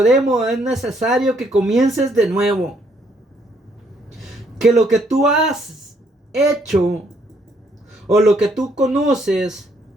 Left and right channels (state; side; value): normal; both; correlation 0.69